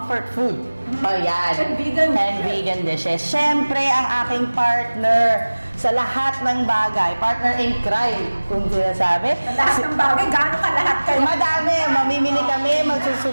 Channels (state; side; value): inverted; both; correlation -1.00